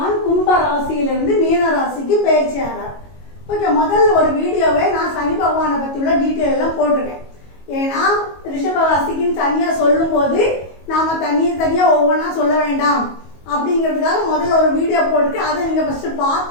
கும்ப ராசியிலிருந்து மீன ராசிக்கு பயிற்சி ஆகிறார். ஓகே, முதல்ல ஒரு வீடியோவை நான் சனி பகவானை பற்றி உள்ள டீட்டெயில் எல்லாம் போட்டிருக்கேன். ஏன்னா ரிஷபராசிக்குன்னு தனியாக சொல்லும்போது நாம் தனியாக ஒவ்வொன்றா சொல்ல வேண்டாம் அப்படிங்கிறதுக்காக முதல்ல ஒரு வீடியோ போட்டுட்டு அதை நீங்கள் ஃபஸ்ட்டு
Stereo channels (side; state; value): right; late; 22 ms